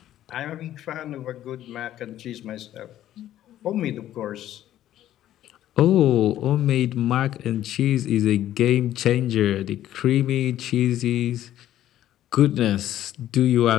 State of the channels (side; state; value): right; quieter; 12.6 dB